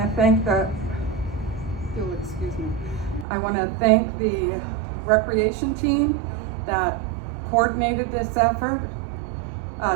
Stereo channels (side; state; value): left; drops out; at 3.2 s